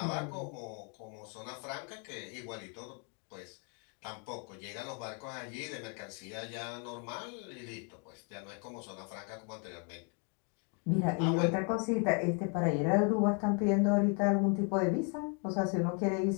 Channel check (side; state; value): right; quieter; 37.3 dB